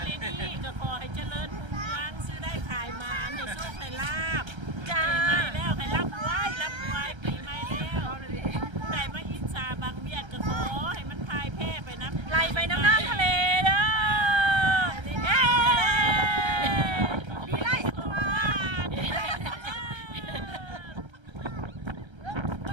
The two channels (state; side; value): late; left; 1.3 ms